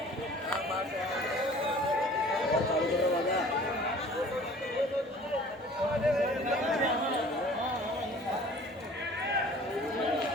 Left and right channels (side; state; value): both; normal; correlation 0.48